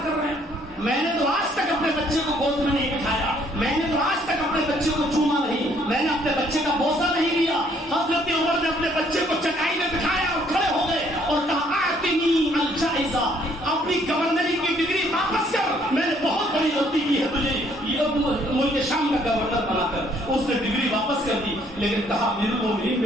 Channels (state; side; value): normal; both; correlation 0.65